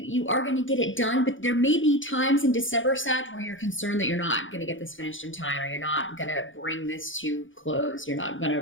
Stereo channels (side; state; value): right; late; 0.57 ms